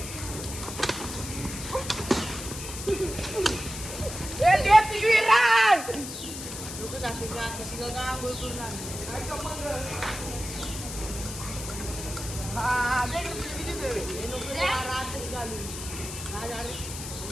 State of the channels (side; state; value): left; noise; hiss, 9 dB below the sound